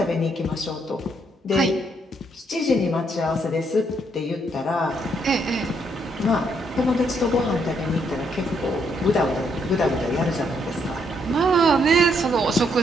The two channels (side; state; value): both; normal; correlation 0.73